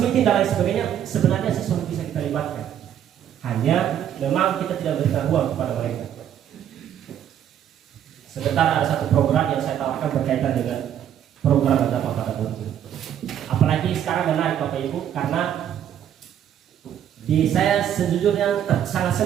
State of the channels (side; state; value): left; quieter; 10.0 dB